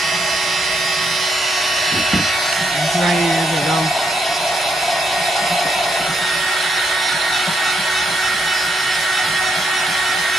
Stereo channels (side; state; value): both; normal; correlation 0.77